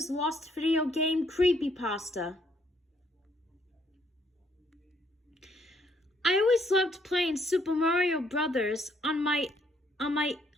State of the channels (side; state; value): both; normal; correlation 0.69